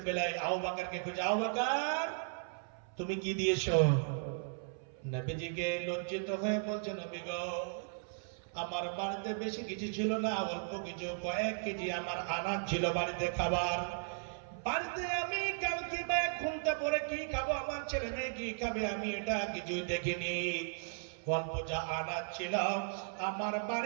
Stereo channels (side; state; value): left; silent; 54 dB below the other